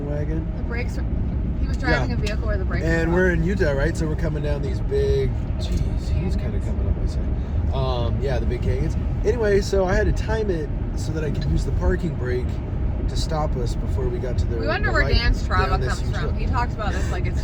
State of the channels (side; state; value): both; identical; correlation 1.00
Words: wagon. The brakes were... He was driving a vehicle where the brakes were out. And we're in Utah, right? So we're coming down these big... Jeez, he's kind of coming up my side. Yeah, the big canyons. Anyway, so I had to time it so that I could use the parking brake to stop us before we got to the... We wonder where Dan's Strava comes from. He talks about this like it's